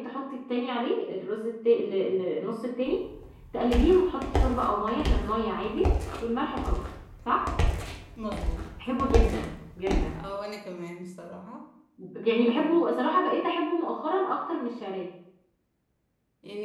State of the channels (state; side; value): identical; both; correlation 1.00